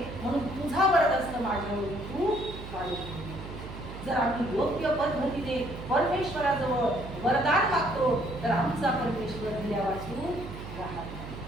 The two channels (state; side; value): noise; right; hum, 11 dB below the sound